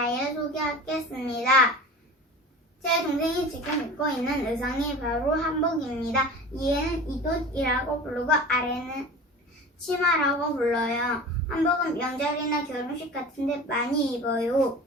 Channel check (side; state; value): both; normal; correlation 0.37